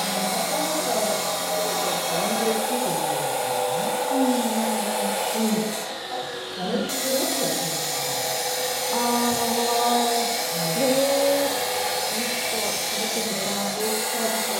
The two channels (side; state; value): both; identical; correlation 1.00